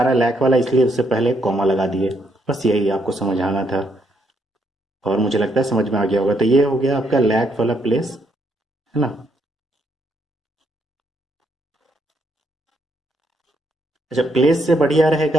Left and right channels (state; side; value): normal; both; correlation 0.74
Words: रहा है लैख वाला, इसलिए उससे पहले कॉमा लगा दिए। बस यही आपको समझाना था, और मुझे लगता है समझ में आ गया होगा। तो ये हो गया आपका लैख वाला प्लेस, है ना। अच्छा, प्लेस से बढ़िया